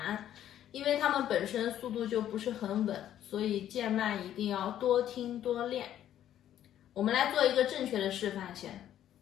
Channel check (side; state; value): right; quieter; 11.3 dB